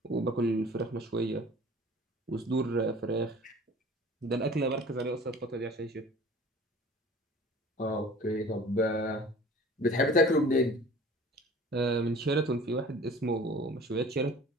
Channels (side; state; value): both; normal; correlation 0.46